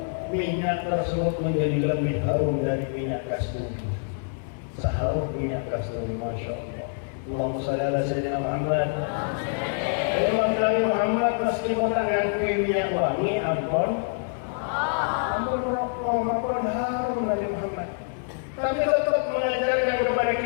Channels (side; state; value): right; silent; 61 dB below the other